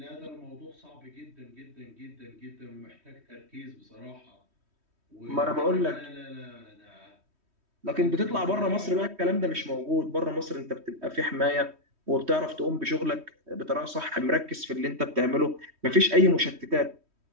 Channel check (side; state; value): left; late; 3.1 ms